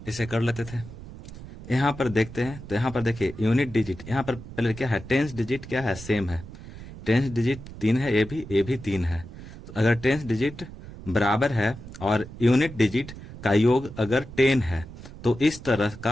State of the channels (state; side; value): noise; right; rumble, 14 dB below the sound